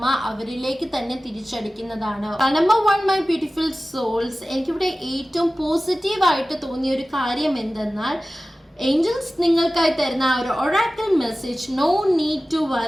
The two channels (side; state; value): both; normal; correlation 0.96